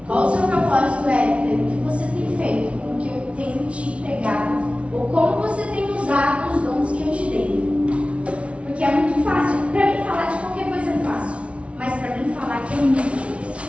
qual o seu propósito é, o que você tem feito com o que eu tenho te entregado, ou como você tem usado os dons que eu te dei. Porque é muito fácil, para mim falar de qualquer coisa é fácil, mas para mim falar que é muito difícil.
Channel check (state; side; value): late; left; 0.062 ms